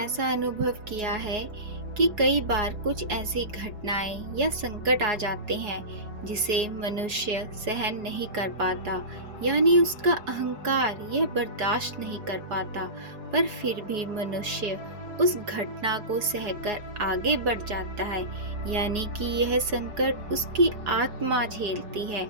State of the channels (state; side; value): late; left; 4.8 ms